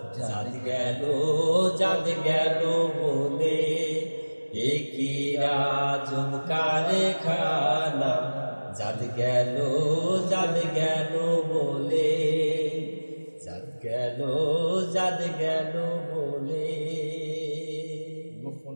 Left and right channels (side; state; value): both; inverted; correlation -1.00